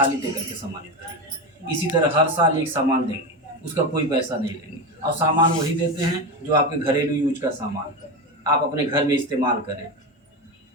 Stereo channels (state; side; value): normal; both; correlation 0.18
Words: दे करके सम्मानित करेंगे। इसी तरह हर साल एक सामान देंगे, उसका कोई पैसा नहीं लेंगे। और सामान वही देते हैं जो आपके घरेलू यूज का सामान है, आप अपने घर में इस्तेमाल करें,